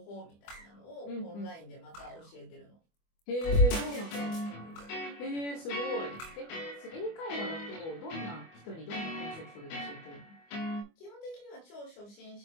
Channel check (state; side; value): late; right; 24 ms